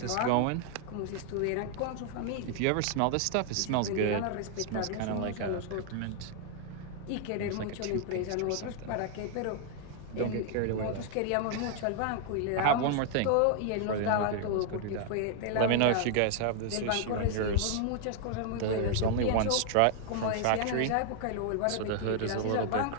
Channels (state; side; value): different; both; correlation 0.00